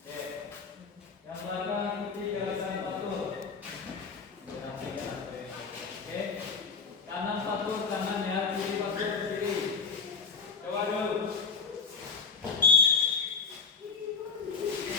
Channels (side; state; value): right; quieter; 5.2 dB